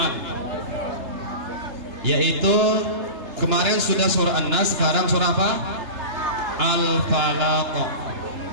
yaitu kemarin sudah surah An-Nas, sekarang surah apa? Al-Falaq.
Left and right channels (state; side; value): late; left; 3.3 ms